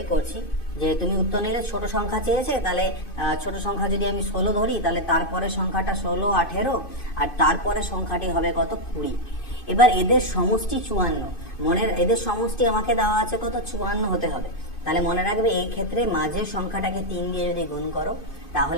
করছি, যে তুমি উত্তর নিলে ছোট সংখ্যা চেয়েছে, তাহলে ছোট সংখ্যা যদি আমি 16 ধরি তাহলে তারপরে সংখ্যাটা 16 18 আর তারপরে সংখ্যাটি হবে কত, 20। এবার এদের সমষ্টি 54, এদের সমষ্টি আমাকে দেওয়া আছে কত, 54 হতে হবে। তাহলে মনে রাখবে এই ক্ষেত্রে মাঝের সংখ্যাটাকে 3 দিয়ে যদি গুণ করো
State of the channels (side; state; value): right; late; 2.5 ms